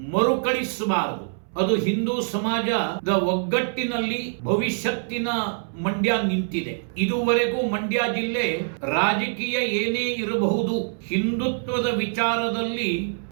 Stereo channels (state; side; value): silent; left; 62 dB below the other